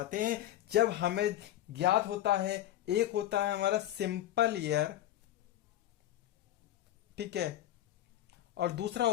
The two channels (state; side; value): quieter; right; 13.1 dB